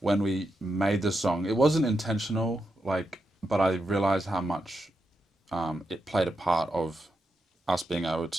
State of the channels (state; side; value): normal; both; correlation 0.85